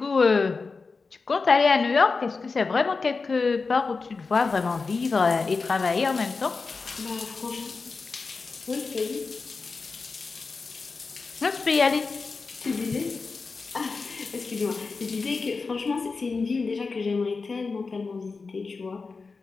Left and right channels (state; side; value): quieter; right; 4.4 dB